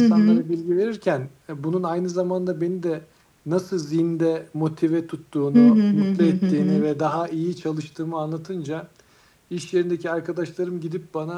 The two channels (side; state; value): both; identical; correlation 1.00